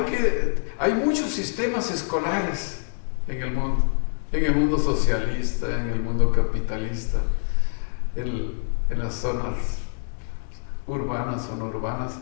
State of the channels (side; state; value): right; silent; 62 dB below the other